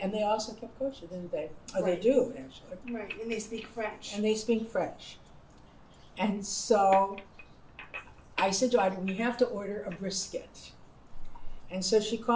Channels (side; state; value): both; identical; correlation 1.00